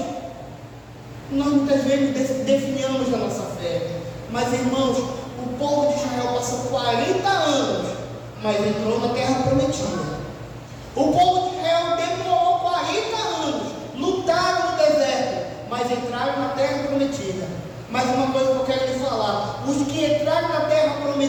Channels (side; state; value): both; identical; correlation 1.00